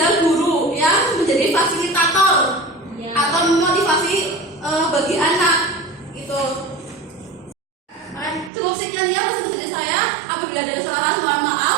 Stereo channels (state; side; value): drops out; left; at 8.5 s